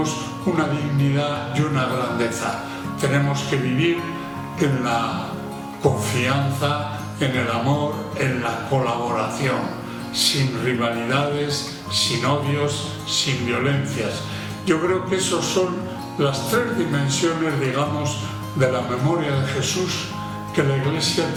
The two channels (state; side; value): identical; both; correlation 1.00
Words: una dignidad y una grandeza. Tenemos que vivir en la confianza, en el amor, en la colaboración, sin rivalidades, sin odios, sin violencias. Yo creo que esas son las tres dimensiones, digamos, de la memoria de Jesús que la Iglesia